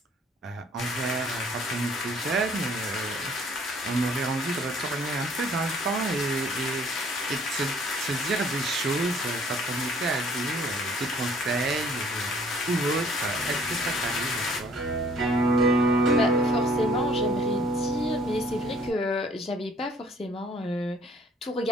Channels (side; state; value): both; normal; correlation 0.58